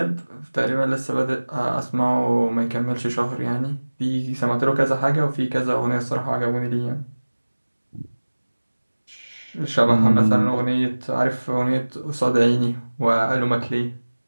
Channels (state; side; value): inverted; both; correlation -1.00